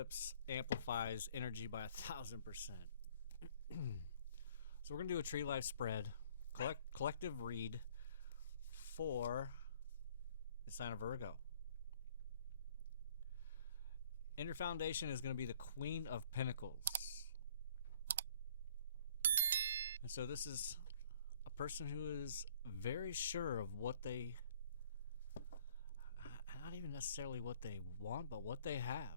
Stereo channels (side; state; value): both; inverted; correlation -0.57